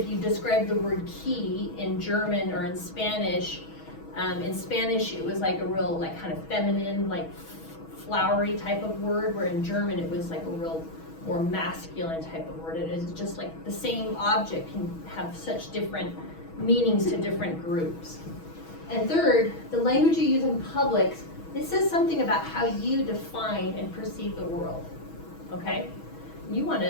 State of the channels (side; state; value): right; late; 6.2 ms